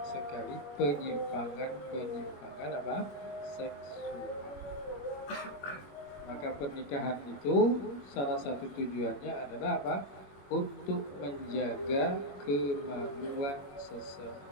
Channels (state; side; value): late; right; 21 ms